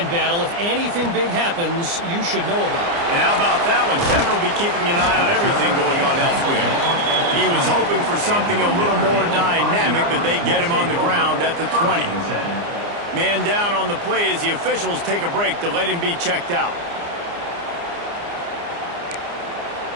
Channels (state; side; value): late; left; 29 ms